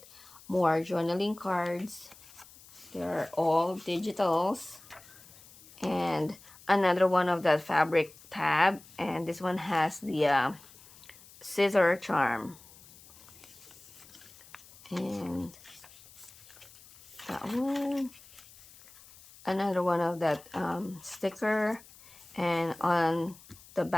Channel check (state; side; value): noise; left; hiss, 22 dB below the sound